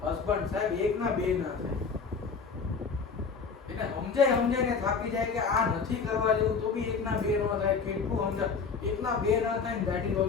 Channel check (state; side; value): quieter; right; 5.3 dB